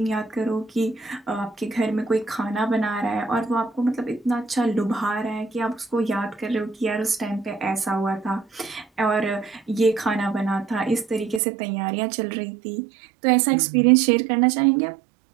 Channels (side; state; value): left; drops out; at 11.4 s